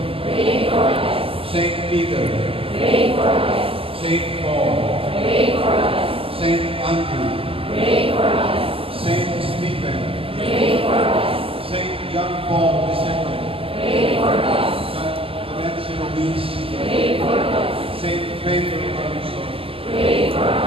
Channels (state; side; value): late; left; 0.26 ms